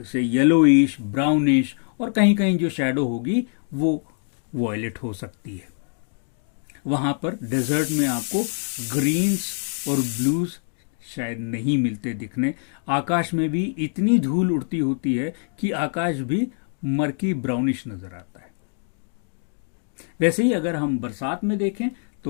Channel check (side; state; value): right; silent; 56 dB below the other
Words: से येलोइश, ब्राउनिश, और कहीं कहीं जो शेडो होगी वो वॉयलेट हो सकती है। वहां पर डेजर्ट में आपको ग्रीन्स और ब्लूज शायद नहीं मिलते दिखने। आकाश में भी इतनी धूल उड़ती होती है कि आकाश भी मर्की ब्राउनिश नजर आता है। वैसे ही अगर हम बरसात में देखें